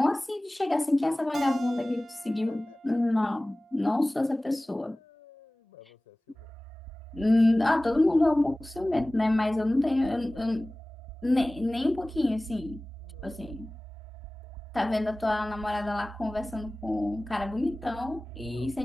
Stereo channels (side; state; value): both; normal; correlation 0.98